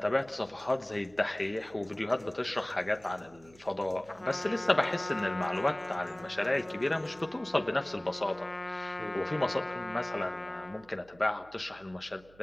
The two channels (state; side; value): noise; right; hum, 26 dB below the sound